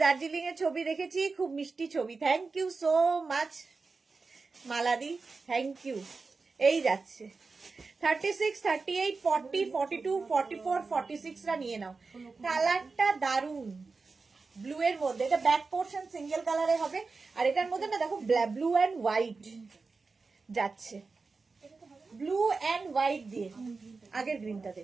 দার্জিলিং এর ছবি দেখেছি, খুব মিষ্টি ছবি। থ্যাংক ইউ সো মাচ মালাদি, থ্যাংক ইউ। এই যাচ্ছে 36, 38, 40, 42, 44, 46 রা নিয়ে নাও। কালারটা দারুন, ব্লু এর মধ্যে, এটা ব্যাক পোর্শন সিঙ্গেল কালারে হবে, আর এটার মধ্যে না দেখো ব্লু এন্ড হোয়াইট যাচ্ছে, ব্লু এন্ড হোয়াইট দিয়ে, আগের গ্রিনটাতে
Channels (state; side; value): quieter; left; 4.2 dB